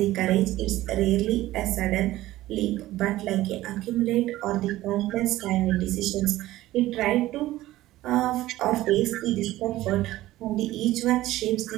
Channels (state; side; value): quieter; left; 16.0 dB